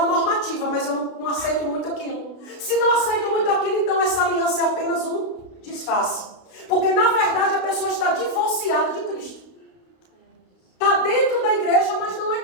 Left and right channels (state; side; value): late; right; 32 ms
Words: normativa, mas eu não aceito muito aquilo. Se não aceito muito aquilo, então essa aliança é apenas um disfarce. Porque na verdade a pessoa está divorciada de Cristo. Está dentro da igreja, mas não